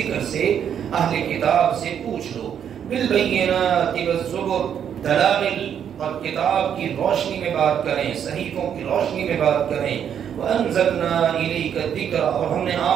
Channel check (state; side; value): quieter; left; 8.7 dB